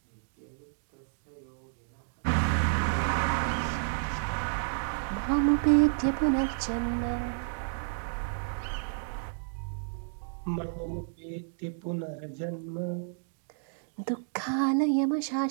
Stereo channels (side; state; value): left; silent; digital silence